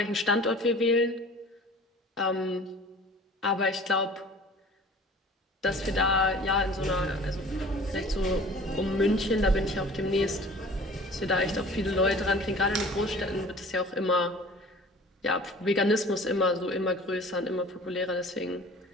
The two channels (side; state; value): both; normal; correlation 0.45